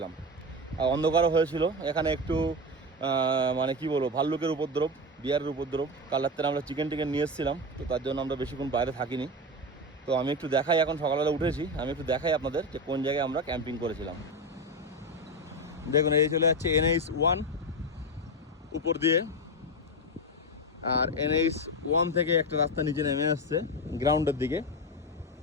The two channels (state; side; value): normal; both; correlation 0.16